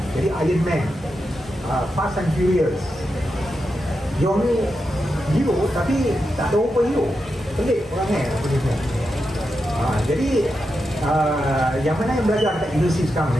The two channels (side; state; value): both; normal; correlation 0.87